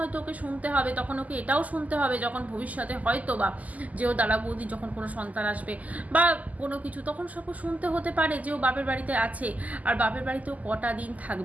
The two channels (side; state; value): left; late; 0.077 ms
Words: ওকে শুনতে হবে। তখন ওকে এটাও শুনতে হবে যখন ভবিষ্যতে হয়তো বা যে ও দাদা বৌদি যখন কোনো সন্তান আসবে বা কোনো কিছু, তখন সব শুনতে হতে পারে যে ও বাপের বাড়িতে আছে, আর বাপের বাড়িতেও কটা দিন